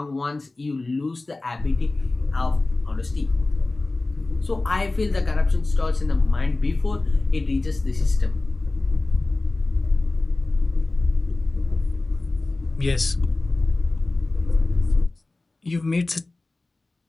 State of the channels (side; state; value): right; quieter; 3.1 dB